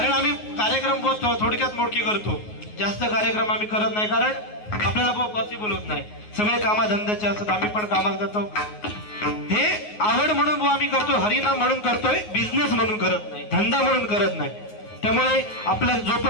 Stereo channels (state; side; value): late; right; 9.5 ms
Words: आम्ही कार्यक्रम थोडक्यात मोडके करतो, जास्त कार्यक्रम आम्ही करत नाही, कारण आपल्याला पॉसिबल होत नाही. सगळे कामाधंद्याचे असतात, आम्ही पण कामात जातो. हे आवड म्हणून आम्ही करतो, हरिनाम म्हणून करतोय, बिझनेस म्हणून करत नाही, धंदा म्हणून करत नाही. त्यामुळे आपल्या